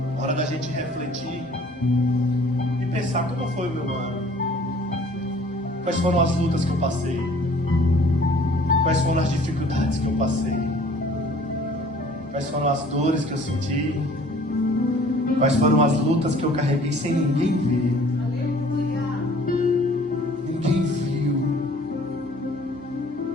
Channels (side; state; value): both; normal; correlation 0.53